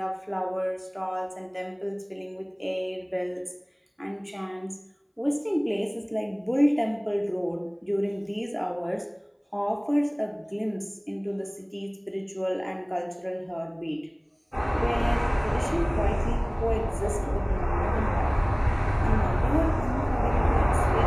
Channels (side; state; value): both; identical; correlation 1.00